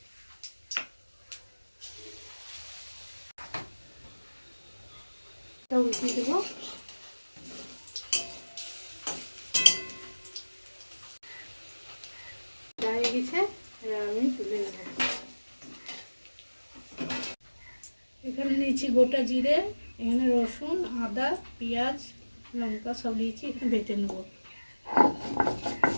উল্টিয়ে দেবো। হয়ে গেছে, এবার আমি তুলে নেব। এখানে নিয়েছি গোটা জিরে, এখানে রসুন, আদা, পেঁয়াজ, লঙ্কা সব নিয়েছি, এখানে বেটে নেব।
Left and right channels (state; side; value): inverted; both; correlation -1.00